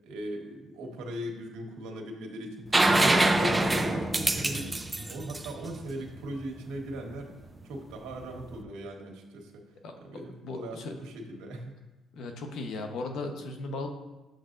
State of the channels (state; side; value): normal; both; correlation 0.89